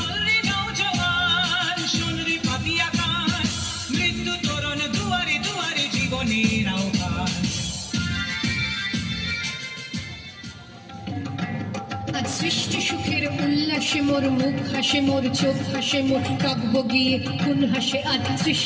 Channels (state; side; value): identical; both; correlation 1.00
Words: রে নওজওয়ান শোন রে পাতিয়া খান মৃত্যু তরণ দুয়ারে দুয়ারে জীবনের আহ্বান সৃষ্টি সুখের উল্লাসে মোর মুখ হাসে মোর চোখ হাসে মোর কাব্য গিয়ে কোন হাসে আজ